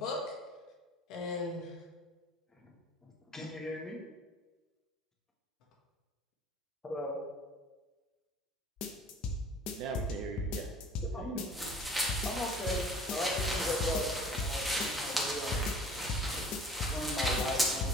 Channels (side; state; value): both; normal; correlation 0.48